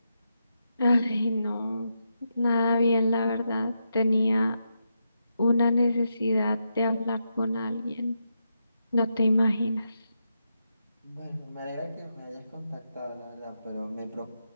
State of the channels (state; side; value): inverted; both; correlation -0.84